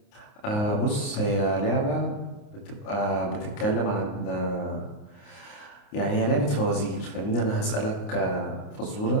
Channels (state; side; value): late; right; 29 ms